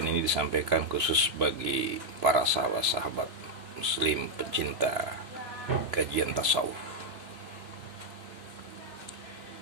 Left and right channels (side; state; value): left; late; 3.0 ms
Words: ini disampaikan khusus bagi para sahabat-sahabat muslim pencinta kajian tasawuf.